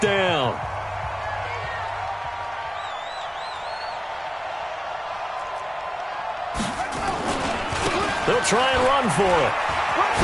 down. They'll try and run for it.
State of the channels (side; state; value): both; identical; correlation 1.00